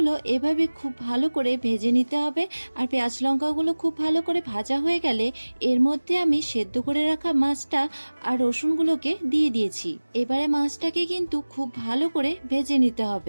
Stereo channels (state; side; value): inverted; both; correlation -1.00